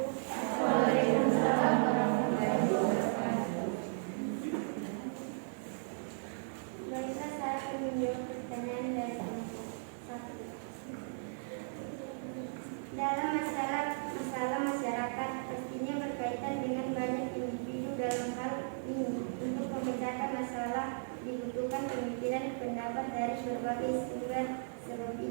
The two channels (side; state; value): left; silent; 54 dB below the other